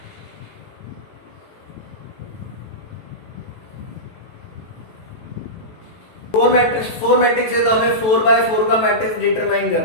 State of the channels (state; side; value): late; right; 18 ms